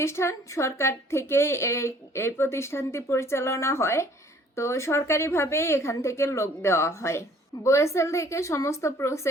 সরকার থেকেই এই প্রতিষ্ঠানটি পরিচালনা হয়, তো সরকারিভাবেই এখান থেকে লোক দেওয়া হয়। বোয়েসেল থেকে সমস্ত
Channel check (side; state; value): both; normal; correlation 0.56